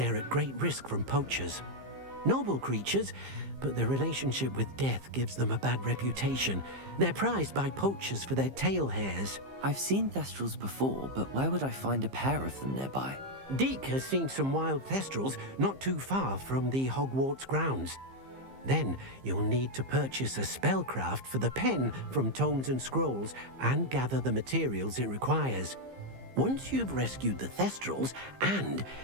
at great risk from poachers. Noble creatures, but their relationship with death gives them a bad reputation. They're prized by poachers for their tail hairs. I've seen thestrals before, but where would I find a pair of them nearby? Deek has seen some wild thestrals not too far from the Hogwarts grounds. Then you'll need to purchase a spellcraft for the pen from Tomes and Scrolls and gather the materials it requires. Once you've rescued the thestrals and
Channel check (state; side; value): late; left; 15 ms